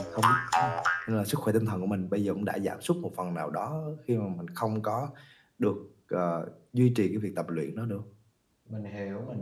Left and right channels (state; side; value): identical; both; correlation 1.00